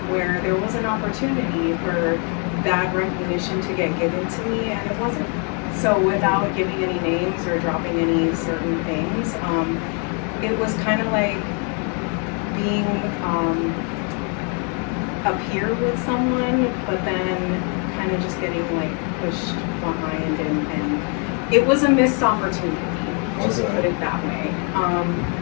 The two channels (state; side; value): quieter; right; 37.9 dB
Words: where there was an opportunity for that recognition to get given to me, and it wasn't. So without giving any names or dropping any certain things, it was kind of like being a peer with someone, but then of just getting like pushed behind, and it was a missed opportunity. Just Okay. put it that way.